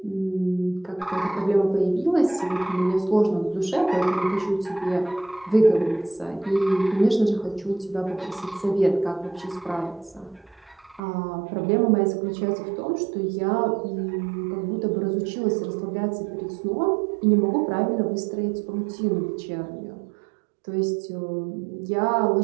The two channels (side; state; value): left; drops out; at 11.0 s